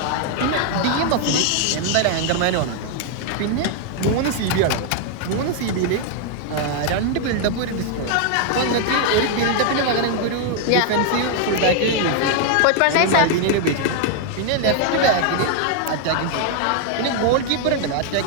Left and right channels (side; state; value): both; different; correlation 0.00